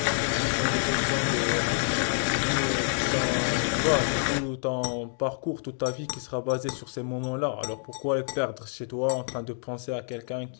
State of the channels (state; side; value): silent; right; digital silence